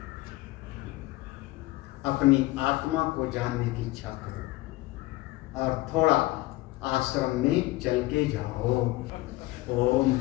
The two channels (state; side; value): quieter; right; 19.4 dB